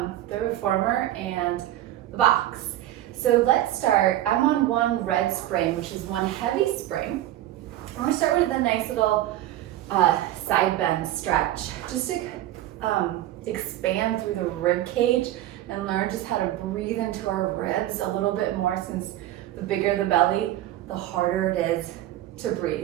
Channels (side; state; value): left; quieter; 13.9 dB